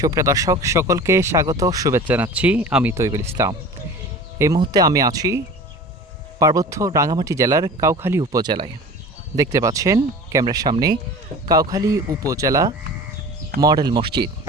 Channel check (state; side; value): normal; both; correlation 0.39